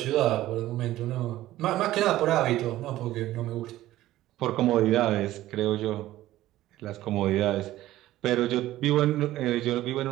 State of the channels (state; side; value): quieter; left; 15.1 dB